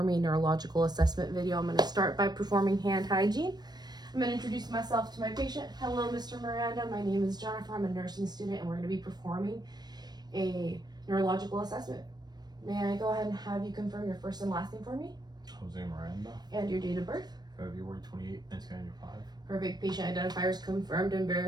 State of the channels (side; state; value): left; late; 0.20 ms